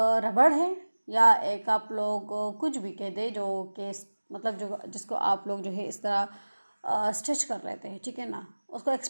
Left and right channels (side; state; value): both; inverted; correlation -1.00